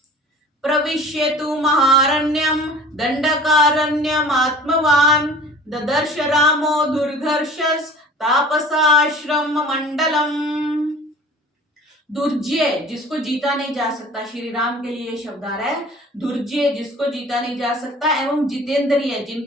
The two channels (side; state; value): both; normal; correlation 0.44